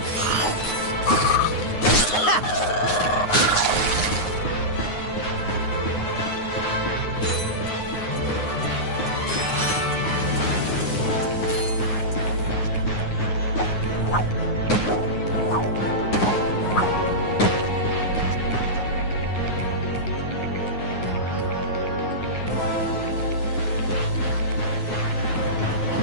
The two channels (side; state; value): right; late; 9.5 ms